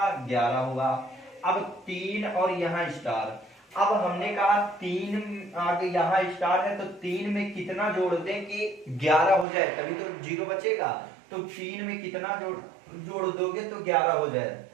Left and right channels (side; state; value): left; drops out; at 9.5 s